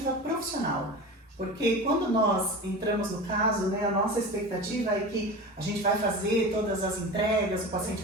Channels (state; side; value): normal; both; correlation 0.31